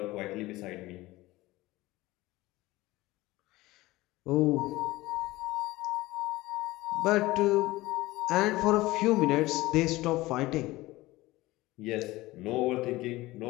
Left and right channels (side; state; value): right; quieter; 19.0 dB